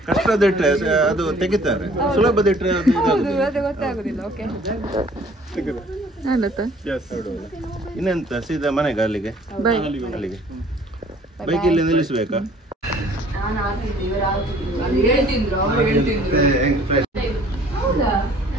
ಕಷ್ಟದಿಟ್ರೆ ಅದು ತೆಗಿತಾರೆ, ಸುಲಭದಿಟ್ರೆ ಅದು ಗೊತ್ತಾಗುದಿಲ್ಲ. ಓಕೆ, ಇನ್ನೆಂತ ಸೀದಾ ಮನೆಗೆ? ಅಲ್ಲಿಗೆ ಬೈಕ್ ಇಲ್ಲಿ ನಿಲ್ಲಿಸ್ಬೇಕಾ?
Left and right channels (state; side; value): normal; both; correlation 0.55